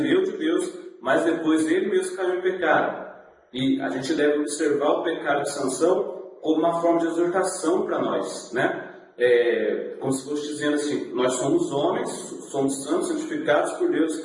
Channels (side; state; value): both; identical; correlation 1.00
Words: de Deus, mas depois ele mesmo caiu em pecado. E a gente deve observar o pecado de Sansão como uma forma de exortação para nós, né? Como se fosse dizendo assim, nós somos homens, somos santos, santificados por Deus,